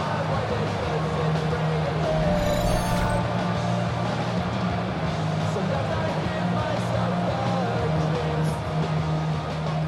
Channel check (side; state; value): both; identical; correlation 1.00